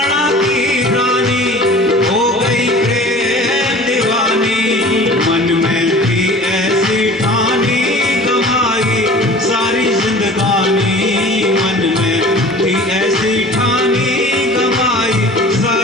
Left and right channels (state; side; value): normal; both; correlation 0.43